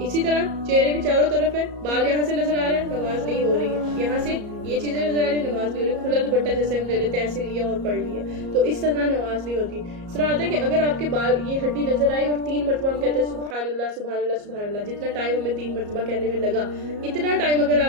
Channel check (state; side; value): late; left; 34 ms